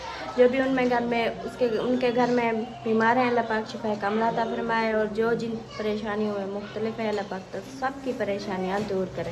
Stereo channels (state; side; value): identical; both; correlation 1.00